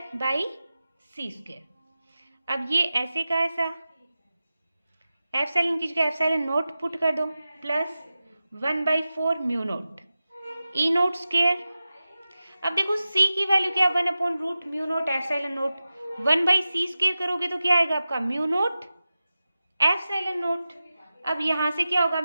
by c square. अब ये ऐसे का ऐसा एप्सिलॉन की जगह एप्सिलॉन नोट पुट कर दो plus 1/4 mu naught E note square. अब देखो सी की वैल्यू क्या, 1/रूट mu naught epsilon note, 1/सी square करोगे तो क्या आएगा आपका म्यू नोट एप्सिलॉन नोट। अब यहाँ से क्या होगा,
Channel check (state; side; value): inverted; both; correlation -0.94